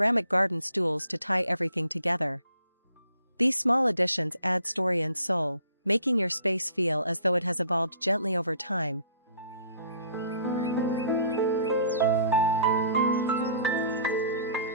garden stools to tie everything together. These small additions add story and soul, making your space feel as though it has evolved gently over time,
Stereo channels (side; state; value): both; inverted; correlation -0.55